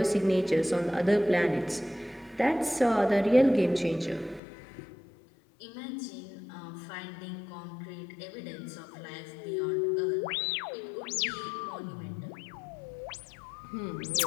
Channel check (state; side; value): drops out; right; at 4.4 s